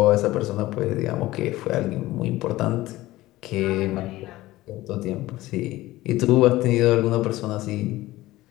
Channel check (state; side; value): quieter; right; 17.4 dB